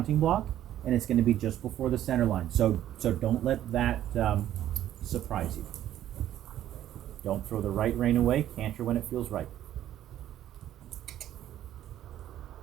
block, and it's going to be just before the center line. So don't let that surprise you. Don't throw the right rein away. Canter when it feels right.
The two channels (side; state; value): left; quieter; 12.1 dB